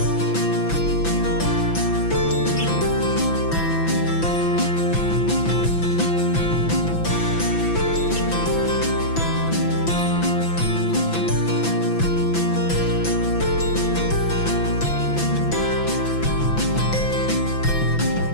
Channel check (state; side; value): late; right; 6.0 ms